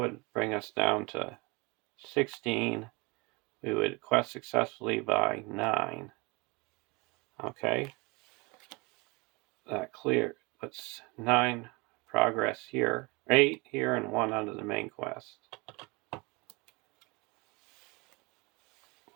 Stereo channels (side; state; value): left; quieter; 26.9 dB